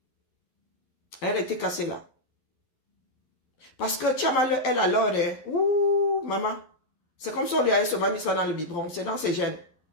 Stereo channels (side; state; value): right; late; 11 ms